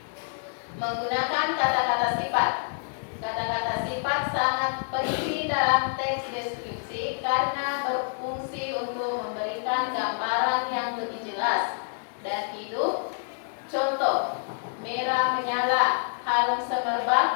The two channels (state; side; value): silent; right; digital silence